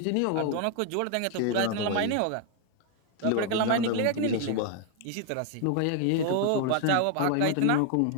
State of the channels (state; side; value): different; both; correlation 0.00